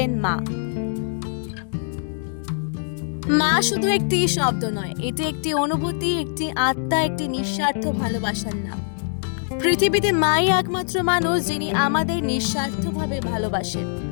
মা। মা শুধু একটি শব্দ নয়, এটি একটি অনুভূতি, একটি আত্মা, একটি নিঃস্বার্থ ভালোবাসার নাম। পৃথিবীতে মাই একমাত্র মানুষ যিনি আমাদের নিঃস্বার্থভাবে ভালোবাসেন,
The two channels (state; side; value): silent; right; digital silence